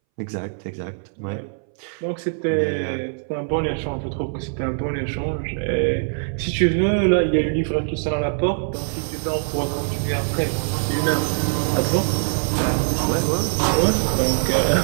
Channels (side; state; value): left; silent; 63 dB below the other